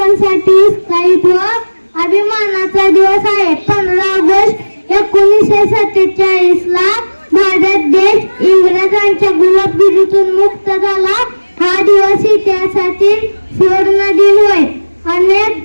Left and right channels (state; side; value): inverted; both; correlation -1.00